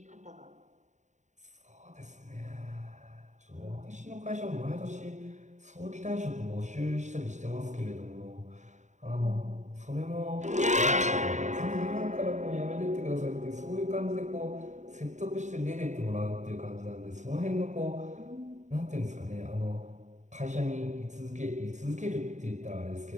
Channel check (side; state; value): left; late; 0.34 ms